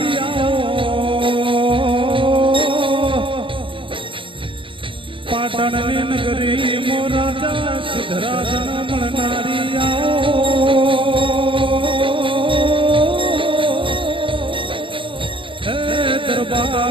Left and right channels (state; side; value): late; left; 0.25 ms